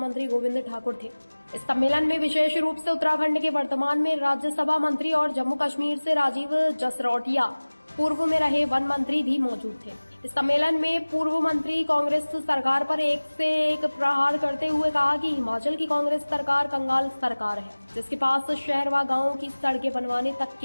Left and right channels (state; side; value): inverted; both; correlation -1.00